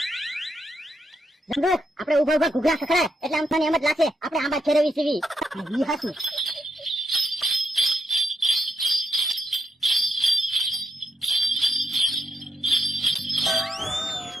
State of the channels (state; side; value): normal; both; correlation 0.79